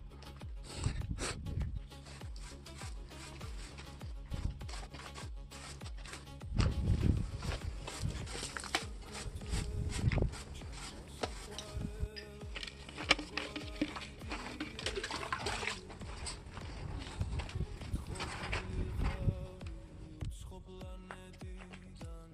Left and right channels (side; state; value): both; identical; correlation 1.00